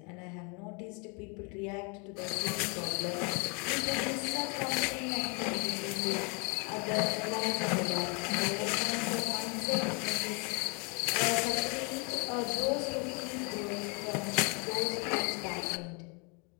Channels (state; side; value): quieter; right; 33.6 dB